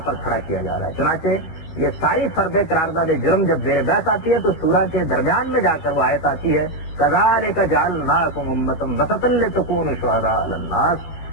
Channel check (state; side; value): late; right; 13 ms